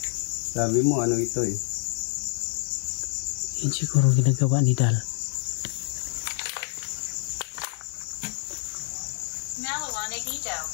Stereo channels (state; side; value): silent; right; digital silence